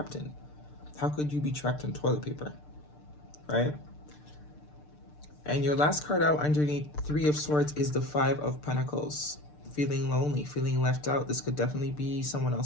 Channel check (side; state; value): right; late; 6.7 ms